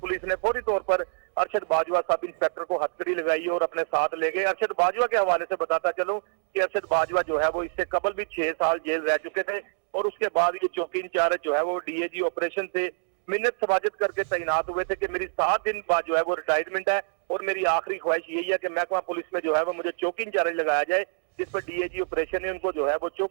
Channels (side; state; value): left; silent; digital silence